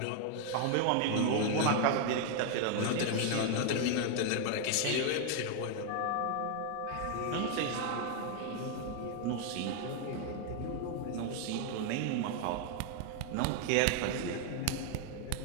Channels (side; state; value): both; different; correlation 0.00